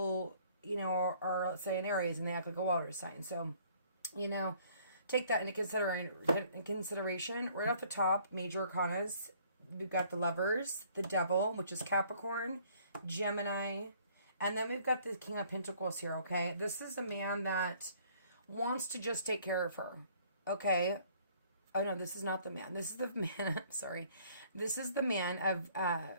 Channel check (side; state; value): both; inverted; correlation -0.59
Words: are let's say an Aries and they act like a water sign. So, you know. Take that into consideration. Right off the top, major arcanas. We've got the Lovers, the Devil, which is Capricorn, Gemini, and then we've got the King of Pentacles here, okay? This is a man that wants to just take care of her, okay? Oh, no, this is not the man. This is the man, I'm sorry. This is the man of